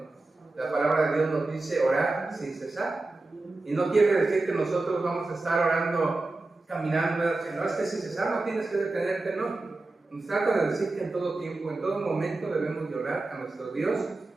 La palabra de Dios nos dice orar sin cesar. Y no quiere decir que nosotros vamos a estar orando, caminando, no es que sin cesar no tienes que detenerte, no. Nos trata de decir que en todo tiempo, en todo momento debemos de orar a nuestro Dios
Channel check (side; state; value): left; quieter; 3.2 dB